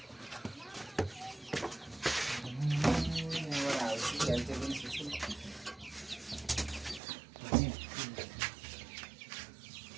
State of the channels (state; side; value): drops out; left; at 7.0 s